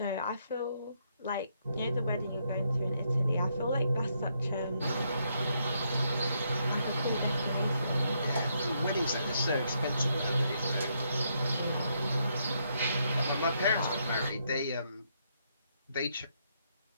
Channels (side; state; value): both; inverted; correlation -0.76